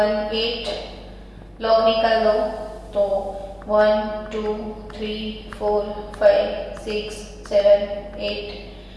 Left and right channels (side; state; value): both; identical; correlation 1.00